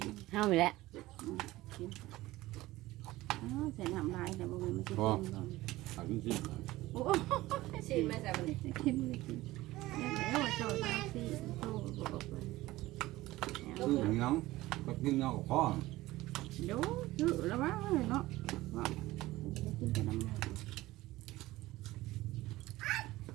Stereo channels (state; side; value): quieter; left; 17.8 dB